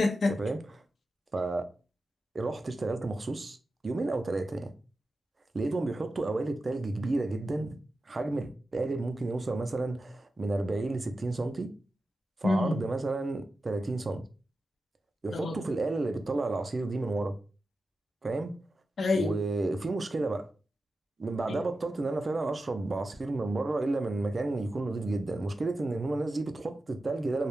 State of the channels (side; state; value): both; normal; correlation 0.92